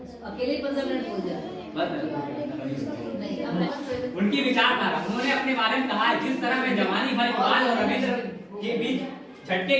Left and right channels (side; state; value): both; identical; correlation 1.00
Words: अकेले 15 मिनट बोल जाए। उनकी विचारधारा, उन्होंने अपने बारे में कहा है, जिस तरह मैं जवानी भर इकबाल और रविंद्र के बीच